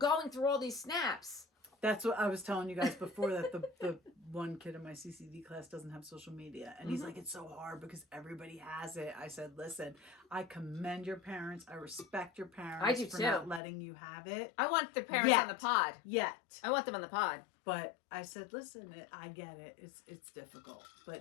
through all these snaps. That's what I was telling you guys before, that the one kid in my CCD class doesn't have social media. And he's like, it's so hard because everybody has it. I said, listen, I commend your parents. I respect your parents I do for too. not letting you have it. I want the parents Yet. on the pod. Yet. I want them on the pod. But I said, listen, I get it. It's difficult.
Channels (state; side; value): drops out; right; at 13.6 s